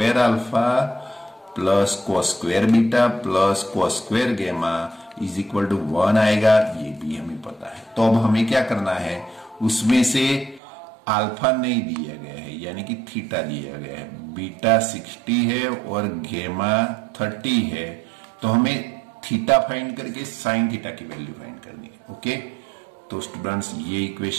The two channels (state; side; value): drops out; left; at 10.6 s